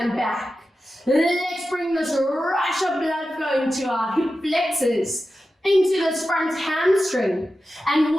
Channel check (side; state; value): both; normal; correlation 0.92